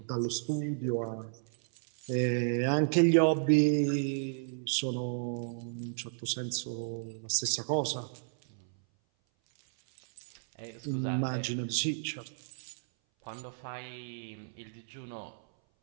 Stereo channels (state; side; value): silent; left; 56 dB below the other